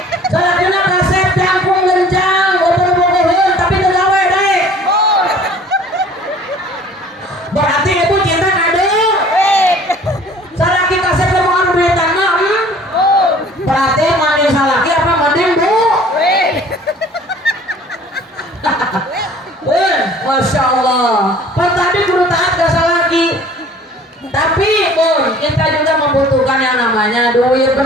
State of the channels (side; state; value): both; normal; correlation 0.51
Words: Salakina kasep jangkung genjang. Berarti ibu cinta kado. Salaki kasep mau duitan mah. Berarti mandi salaki apa mending bu? Masya Allah. Pas tadi kudu taat ke salaki. Tapi pun kita juga membutuhkan yang namanya duit,